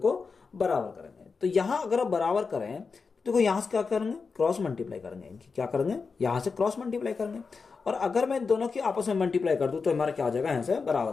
बराबर करेंगे। तो यहां अगर आप बराबर करें तो देखो यहां से क्या करेंगे, क्रॉस मल्टीप्लाई करेंगे, इनकी क्या करेंगे, यहां से क्रॉस मल्टीप्लाई करेंगे, और अगर मैं दोनों की आपस में मल्टीप्लाई कर दूं तो हमारा क्या हो जाएगा, यहां से बराबर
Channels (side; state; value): right; quieter; 4.9 dB